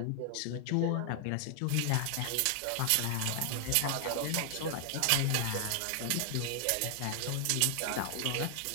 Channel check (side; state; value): both; different; correlation 0.00